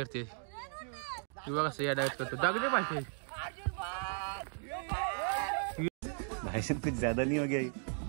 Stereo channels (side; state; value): left; silent; 54 dB below the other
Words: ही बघा अशी यादागत करतो. दगडे पाहिजे भाषण कुछ ज्यादा नहीं हो गया ये?